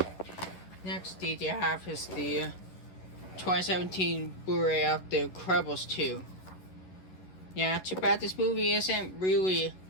Next DVD I have is the 2017 Blu-ray of The Incredibles 2. Yeah, too bad this movie isn't really.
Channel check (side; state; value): right; late; 11 ms